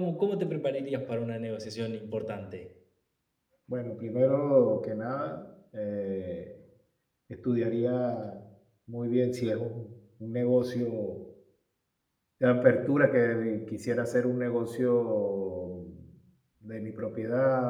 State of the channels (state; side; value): identical; both; correlation 1.00